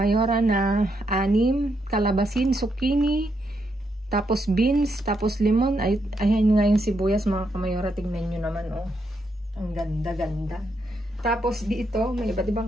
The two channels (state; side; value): normal; both; correlation 0.79